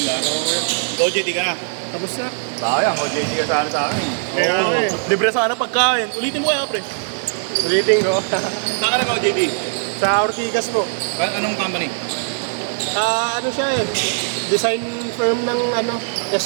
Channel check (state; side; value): silent; left; 59 dB below the other